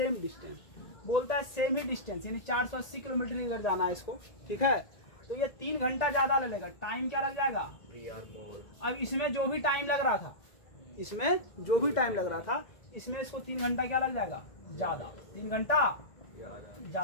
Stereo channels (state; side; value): late; right; 1.9 ms